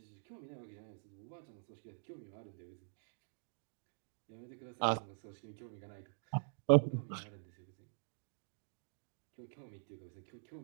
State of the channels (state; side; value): silent; left; digital silence